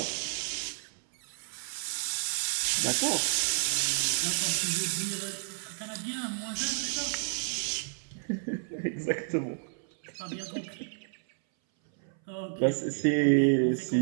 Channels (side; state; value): left; silent; 57 dB below the other